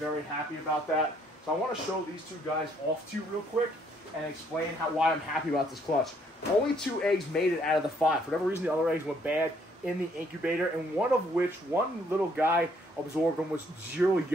happy about that. So I want to show these two guys off to you real quick and explain why I'm happy about this clutch. Only 2 eggs made it out of the 5. For whatever reason, the other eggs went bad in the incubator, and one of which, one little guy absorbed them was 0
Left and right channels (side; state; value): both; normal; correlation 0.67